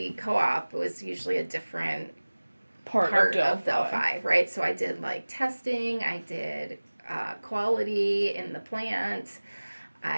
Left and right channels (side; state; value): both; inverted; correlation -1.00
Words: co-op was usually a different part of Delphi, right? So I did testing, I did quality in the plant,